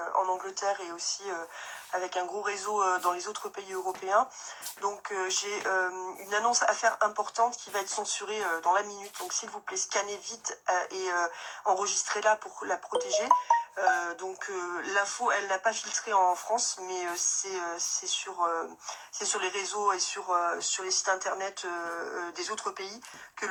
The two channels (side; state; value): both; identical; correlation 1.00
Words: en Angleterre et aussi avec un gros réseau dans les autres pays européens. Donc j'ai une annonce à faire importante qui va être censurée dans la minute. Donc s'il vous plaît, scannez vite et enregistrez-la pour la protéger. L'info, elle n'a pas filtré en France, mais c'est sur les réseaux et sur les sites internet des autres pays que